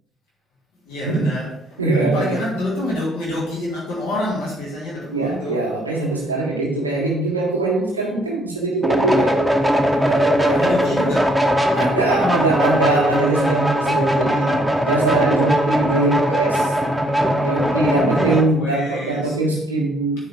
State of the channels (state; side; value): normal; both; correlation 0.65